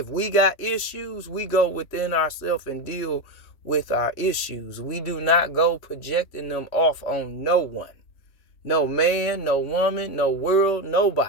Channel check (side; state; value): right; late; 3.1 ms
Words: we got issues, we go within ourselves and deal with our issues. We do not go projecting them off on no one. No man, no woman, no world,